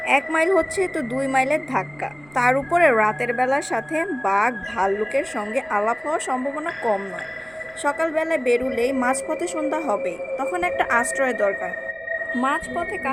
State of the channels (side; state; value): right; noise; rumble, 28 dB below the sound